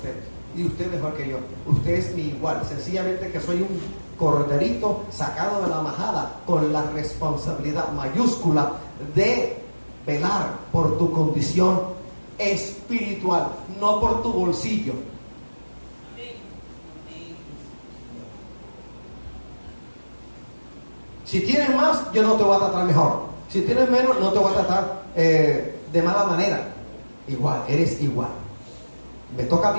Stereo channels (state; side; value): inverted; both; correlation -1.00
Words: y usted mejor que yo. Usted es mi igual, sencillamente que soy un corderito sacado de la majada, con la responsabilidad mayúscula de velar por tu condición espiritual, no por tu bolsillo. Si tienes más, yo no te voy a tratar mejor. Si tienes menos, no te voy a tratar de mala manera. Igual, eres igual. Me toca